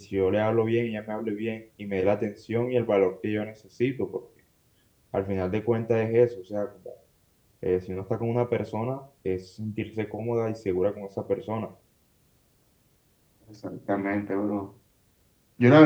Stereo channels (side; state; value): both; identical; correlation 1.00